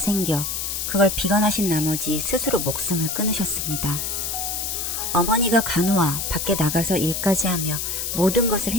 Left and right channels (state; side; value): noise; left; hiss, 2 dB below the sound